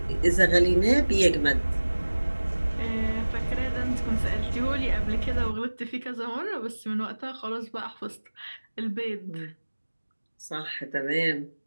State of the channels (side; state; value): both; inverted; correlation -1.00